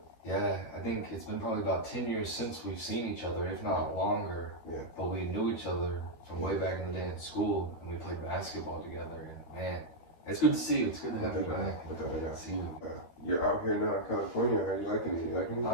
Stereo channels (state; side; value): late; right; 12 ms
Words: Yeah, I think it's been probably about 10 years since we've seen each other, if not longer. Yeah. But we knew each other from way back in the day in school, and we played basketball together. And man, it's good to see you. It's good to have you back. See you. You're out here now in California. Are you liking it? You liking it?